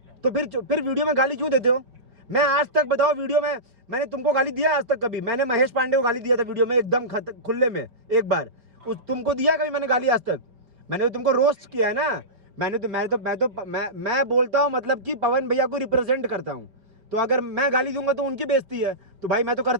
तो फिर वीडियो में गाली क्यों देते हो? मैं आज तक बताओ, वीडियो में मैंने तुमको गाली दिया आज तक कभी? मैंने महेश पांडे को गाली दिया था वीडियो में एकदम खुले में एक बार, तुमको दिया कभी मैंने गाली आज तक? मैंने तो तुमको रोस्ट किया है ना। मैं बोलता हूँ मतलब कि पवन भैया को रिप्रेजेंट करता हूँ, तो अगर मैं गाली दूंगा तो उनकी बेइज्जती है, तो भाई मैं तो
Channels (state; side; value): late; left; 4.5 ms